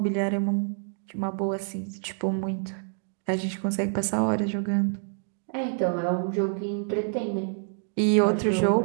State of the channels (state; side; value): silent; left; 60 dB below the other